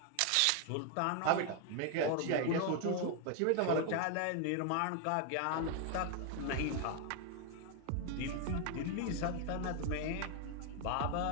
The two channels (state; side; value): different; both; correlation 0.00